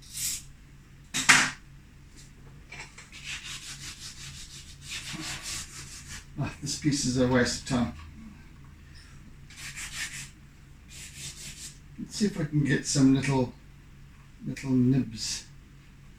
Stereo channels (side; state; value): both; identical; correlation 1.00